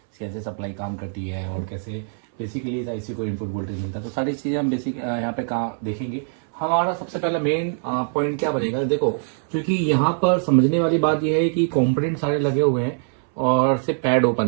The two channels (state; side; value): silent; left; 62 dB below the other